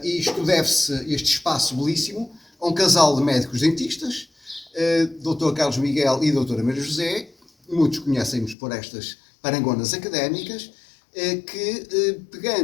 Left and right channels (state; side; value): drops out; right; at 8.6 s